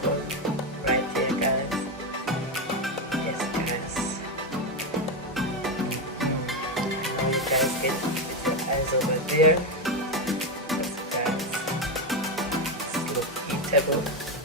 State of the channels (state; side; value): normal; both; correlation 0.09